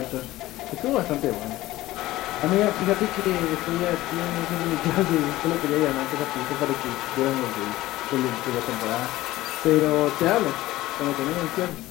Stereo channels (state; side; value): quieter; right; 16.9 dB